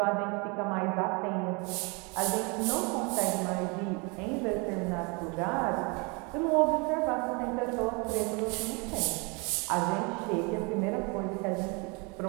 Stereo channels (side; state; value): left; quieter; 30.7 dB